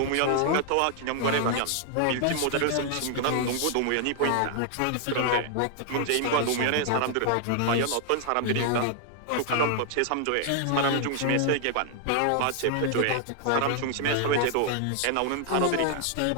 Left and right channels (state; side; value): different; both; correlation 0.00